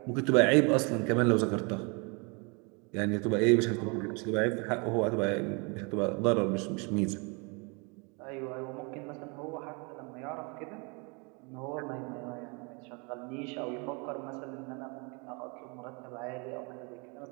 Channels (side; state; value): left; quieter; 32.0 dB